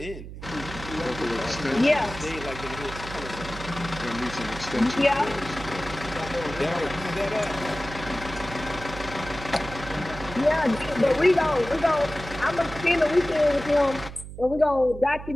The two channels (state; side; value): noise; right; hum, 12 dB below the sound